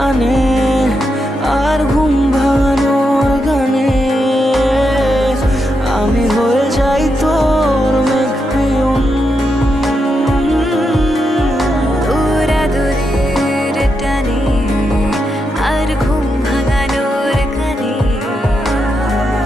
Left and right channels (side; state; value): both; normal; correlation 0.84